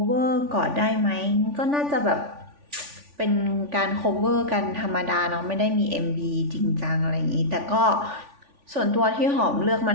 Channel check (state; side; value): late; left; 3.5 ms